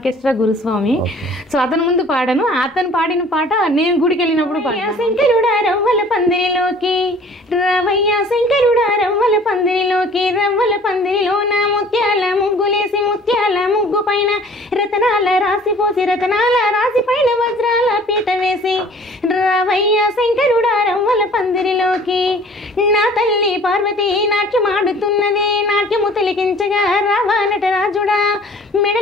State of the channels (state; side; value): normal; both; correlation 0.50